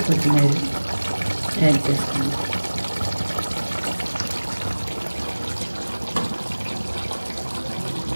కొత్తిమీర యాడ్ చేసుకోండి.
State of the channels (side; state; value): both; inverted; correlation -1.00